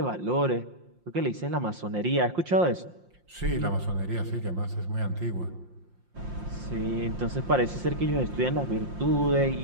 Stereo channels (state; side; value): late; left; 5.7 ms